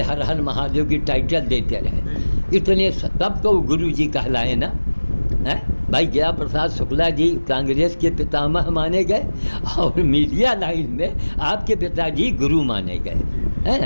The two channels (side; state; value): both; inverted; correlation -1.00